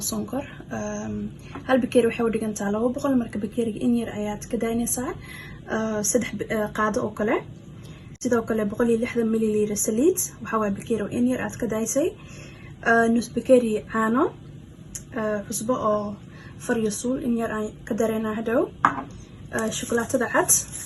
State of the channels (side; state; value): both; identical; correlation 1.00